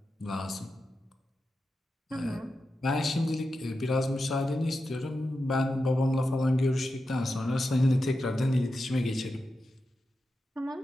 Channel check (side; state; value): both; normal; correlation 0.90